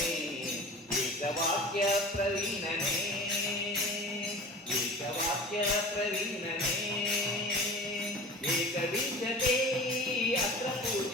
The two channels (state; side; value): normal; both; correlation 0.38